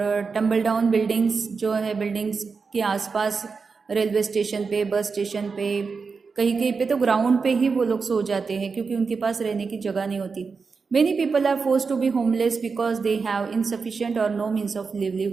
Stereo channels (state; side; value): quieter; left; 5.0 dB